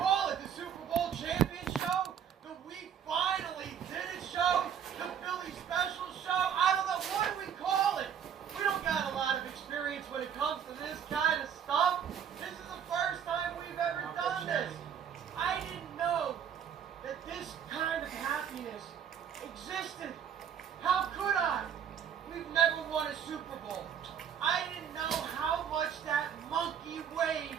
it? The Super Bowl champion show? The We Finally Did It show? The Philly Special show? I don't know. What do we call it? We don't got a lot of experience when it comes to this kind of stuff. This is the first time we've ever done this. I didn't know that this kind of happiness existed. How could I? We've never won a Super Bowl. I didn't know how much that monkey weighed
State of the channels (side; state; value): left; quieter; 8.5 dB